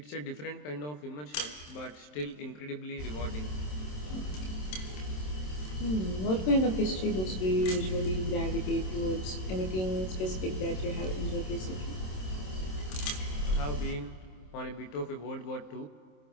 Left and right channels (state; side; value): late; right; 27 ms